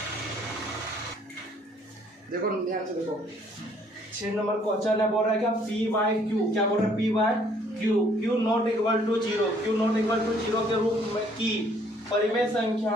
देखो ध्यान से देखो, 6 नंबर क्वेश्चन है, बोल रहा है क्या P/Q, क्या बोल रहा है P/Q नॉट इक्वल टू 0 के रूप में की परिमेय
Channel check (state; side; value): normal; both; correlation 0.62